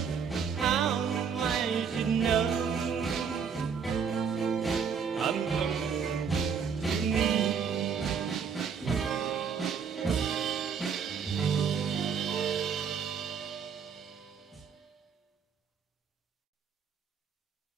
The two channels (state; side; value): quieter; left; 6.6 dB